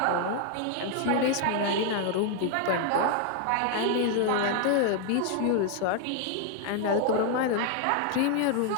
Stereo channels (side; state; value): both; different; correlation 0.00